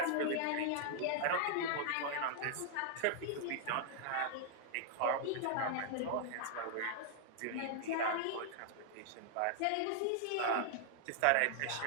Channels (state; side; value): different; both; correlation -0.01